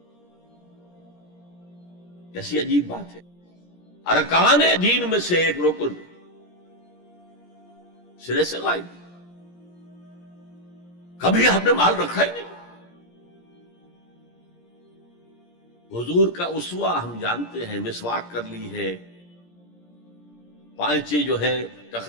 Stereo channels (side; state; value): right; late; 17 ms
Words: کیسی عجیب بات ہے. ارکان دین میں سے ایک رکن سرے سے غائب. کبھی آپ نے مال رکھا ہی نہیں. حضور کا اسوہ ہم جانتے ہیں، مسواک کر لی ہے، پانچے جو ہے